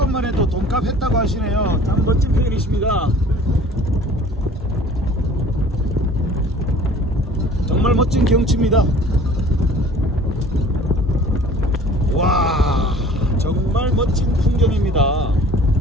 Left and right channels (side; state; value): both; normal; correlation 0.48